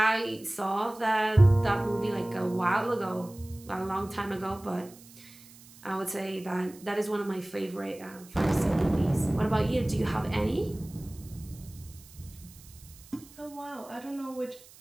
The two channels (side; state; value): right; noise; hiss, 22 dB below the sound